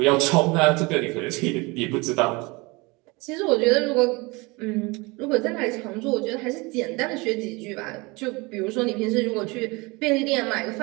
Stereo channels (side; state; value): left; quieter; 25.5 dB